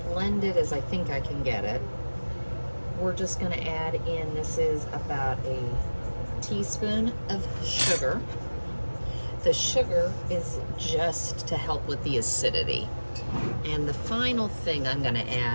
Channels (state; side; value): inverted; both; correlation -1.00